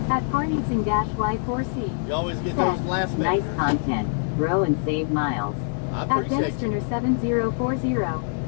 At Parneatsing-Y4C You always get those last Nice minutes. content. Grow and save miles. I at appreciate you.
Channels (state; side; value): silent; right; digital silence